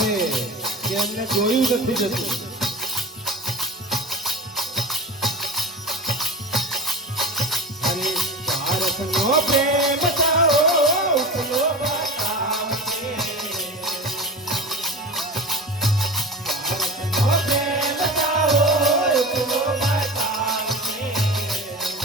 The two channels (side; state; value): both; normal; correlation 0.31